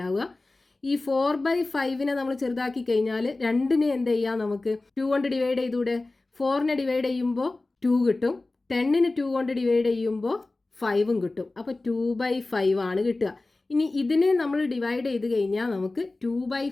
ഈ 4/5നെ നമ്മൾ ചെറുതാക്കി കഴിഞ്ഞാൽ രണ്ടിനെ എന്ത് ചെയ്യാം, നമുക്ക് 2 കൊണ്ട് ഡിവൈഡ് ചെയ്തൂടെ. 4നെ ഡിവൈഡ് ചെയ്യുമ്പോൾ 2 കിട്ടും, 10നെ 2 കൊണ്ട് ഡിവൈഡ് ചെയ്യുമ്പോൾ 5ഉം കിട്ടും. അപ്പോൾ 2/5 ആണ് കിട്ടുക. ഇനി ഇതിനെ നമ്മൾ ഡിവൈഡ് ചെയ്ത് കഴിഞ്ഞാൽ നമുക്ക്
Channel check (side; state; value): right; quieter; 3.1 dB